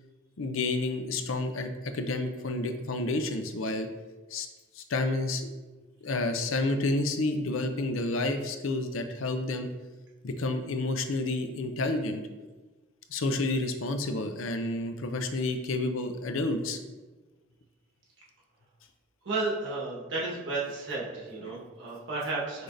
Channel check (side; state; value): both; normal; correlation 0.38